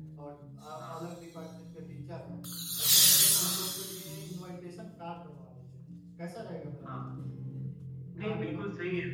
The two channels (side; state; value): both; identical; correlation 1.00